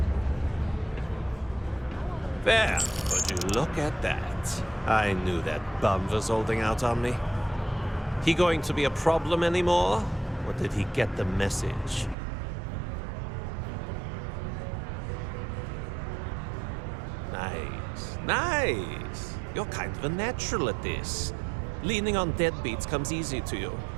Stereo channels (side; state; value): left; drops out; at 12.2 s